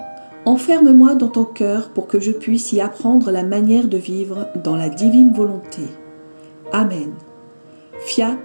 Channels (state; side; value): inverted; both; correlation -1.00